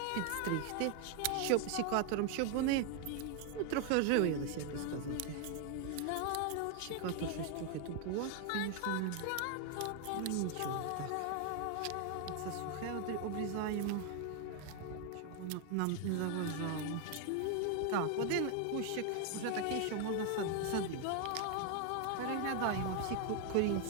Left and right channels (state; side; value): different; both; correlation 0.00